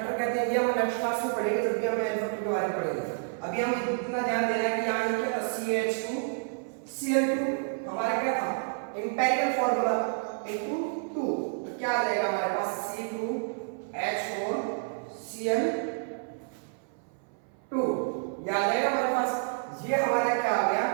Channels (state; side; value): silent; left; 58 dB below the other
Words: कहते हैं। ये हम नेक्स्ट क्लास में पढ़ेंगे जब भी हम n फैक्टर के बारे में पढ़ेंगे। अभी हम इतना ध्यान देना है कि यहाँ ये क्या था, CH2Cl2 हमारा क्या था, एम्पिरिकल फॉर्मूला इनटू 2, तो क्या आ जाएगा हमारे पास C2H4Cl2, ये आ जाएगा हमारे पास। ये हमारा क्या आ गया,